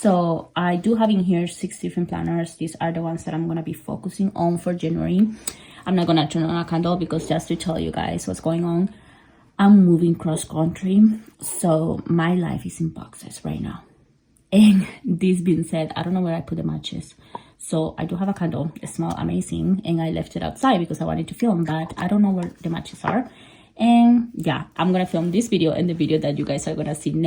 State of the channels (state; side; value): identical; both; correlation 1.00